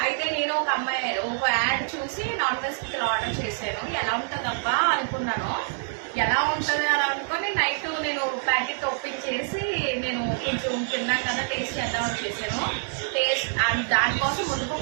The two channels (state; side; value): silent; left; digital silence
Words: అయితే నేను ఒక యాడ్ చూసి నాన్ వెజ్ పికిల్ ఆర్డర్ చేశాను. ఎలా ఉంటుందబ్బా అనుకున్నాను. ఎలా ఉంటుంది అని అనుకొని నైట్ నేను ప్యాకెట్ ఓపెన్ చేసి నేను కొంచెం తిన్నాను కదా, టేస్ట్ చేద్దామని చేశాను. టేస్ట్ దానికోసం